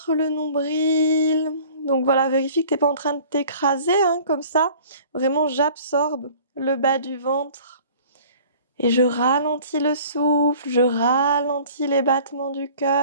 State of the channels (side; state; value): both; inverted; correlation -0.49